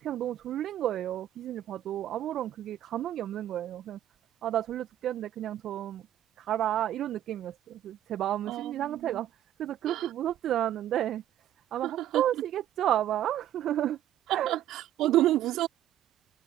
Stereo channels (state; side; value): quieter; left; 12.1 dB